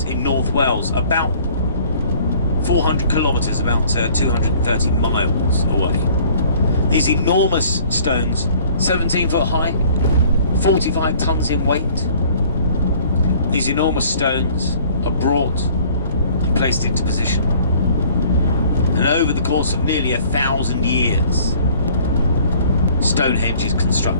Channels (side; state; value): both; inverted; correlation -0.54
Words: in North Wales, about 400 kilometres, about 230 miles away. These enormous stones, 17 foot high, 45 tons in weight. These enormous stones are brought and placed into position. And over the course of nearly 1,000 years, Stonehenge is